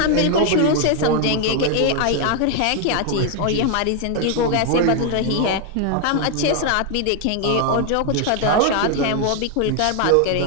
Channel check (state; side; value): different; both; correlation 0.00